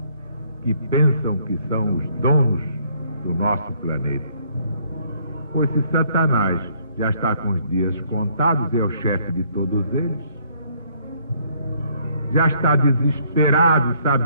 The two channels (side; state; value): both; inverted; correlation -0.66